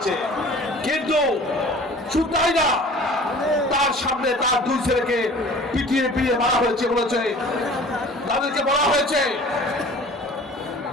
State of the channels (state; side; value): normal; both; correlation 0.45